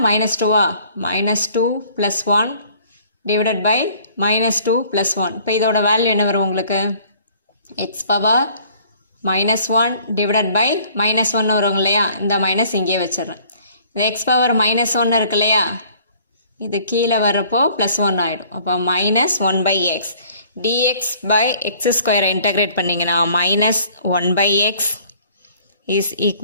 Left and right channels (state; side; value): inverted; both; correlation -0.56